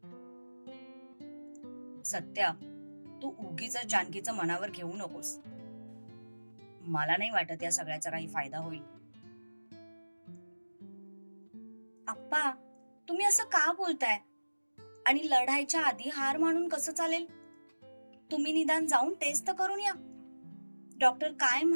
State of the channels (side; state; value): both; inverted; correlation -1.00